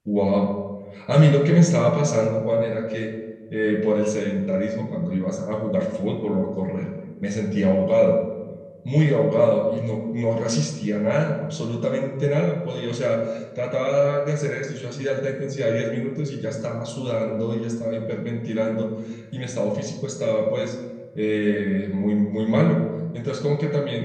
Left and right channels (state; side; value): identical; both; correlation 1.00